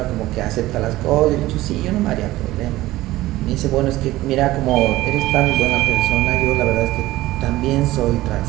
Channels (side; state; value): left; quieter; 17.0 dB